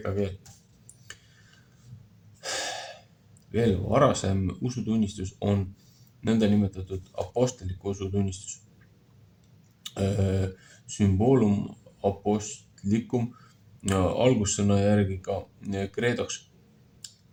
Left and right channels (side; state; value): both; identical; correlation 1.00